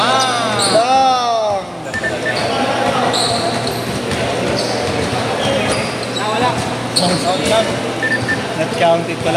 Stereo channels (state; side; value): identical; both; correlation 1.00